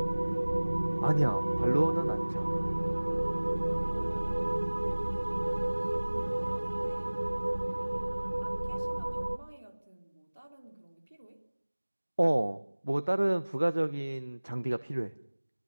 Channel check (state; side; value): inverted; both; correlation -1.00